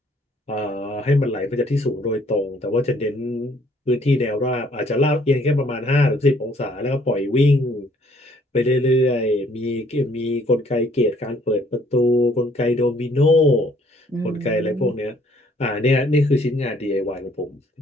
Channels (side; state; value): both; normal; correlation 0.62